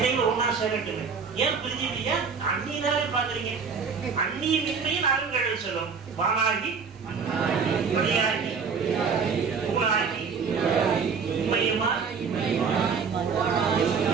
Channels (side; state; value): left; quieter; 5.7 dB